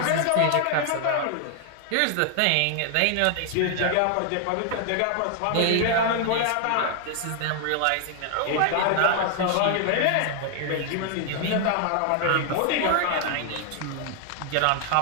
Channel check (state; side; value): different; both; correlation 0.00